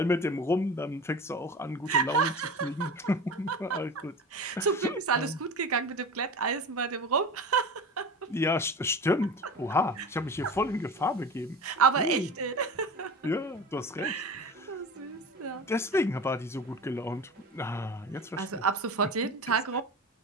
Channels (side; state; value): both; normal; correlation 0.32